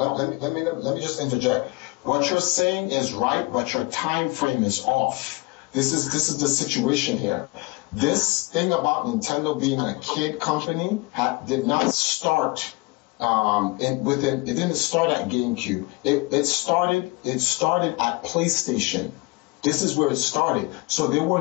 Let me just interject. What you're saying is right, but your time frame is off. This is the situation here. This thing about Nintendo being a kid company did not start it didn't start at GameCube. It started at PlayStation. This is where it started. So there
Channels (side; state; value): right; quieter; 24.3 dB